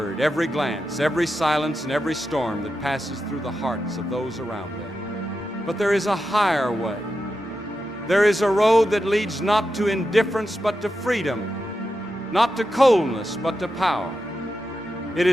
every glance, every silence, and every storm that passes through the hearts of those around them. But there is a higher way. There is a road that leads not to indifference but to freedom, not to coldness but to power. It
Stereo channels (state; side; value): normal; both; correlation 0.88